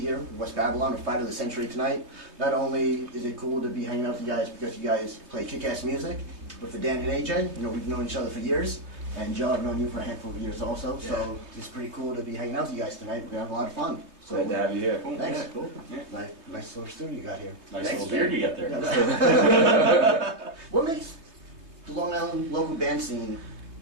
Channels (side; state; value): left; late; 3.2 ms